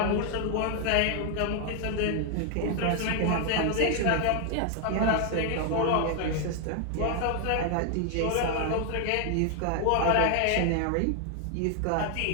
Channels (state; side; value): different; both; correlation 0.00